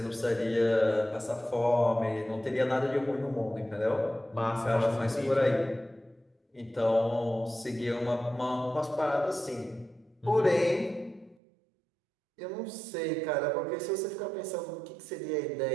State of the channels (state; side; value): drops out; left; at 11.4 s